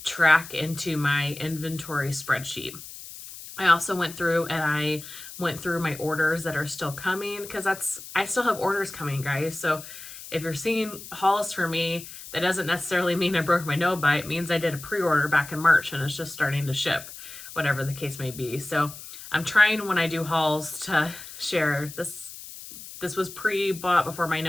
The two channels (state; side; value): noise; left; hiss, 14 dB below the sound